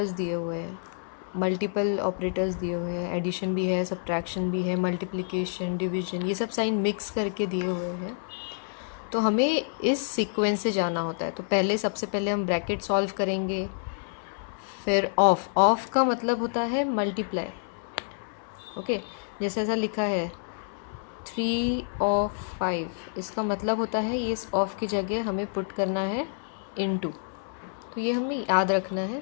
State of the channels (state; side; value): silent; right; 59 dB below the other